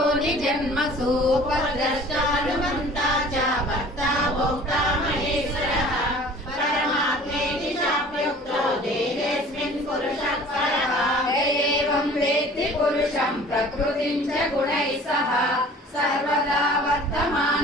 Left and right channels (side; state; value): both; normal; correlation 0.47